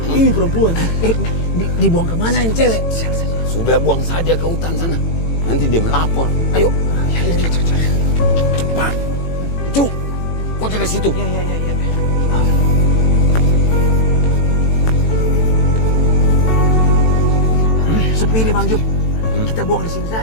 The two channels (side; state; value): right; late; 18 ms